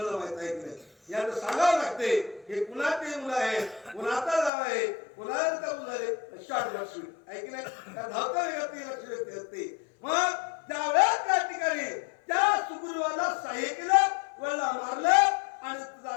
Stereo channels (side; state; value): right; drops out; at 4.5 s